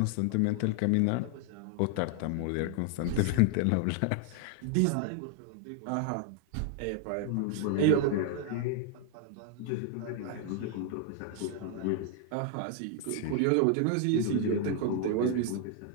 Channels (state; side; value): different; both; correlation 0.00